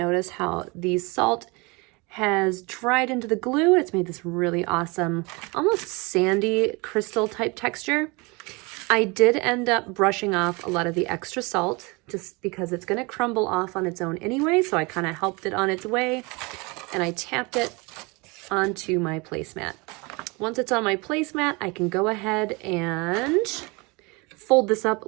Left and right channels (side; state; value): left; quieter; 27.1 dB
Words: how the salt has dried into the glue. It's made this really awesome, almost sandy crystal type texture. I did end up brushing off a lot of the extra salt just because it's going to crumble off on its own anyway, so I kind of helped it on its way, and I tapped it onto my placemat. Once it's on my placemat, I can go ahead and fold this up